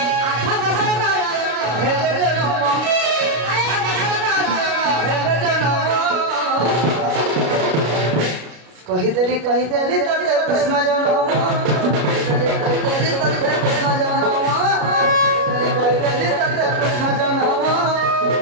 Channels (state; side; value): late; left; 33 ms